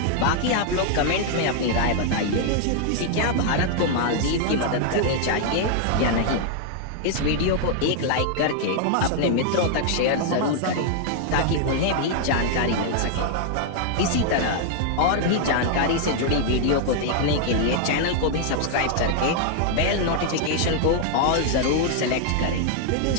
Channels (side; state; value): both; different; correlation 0.00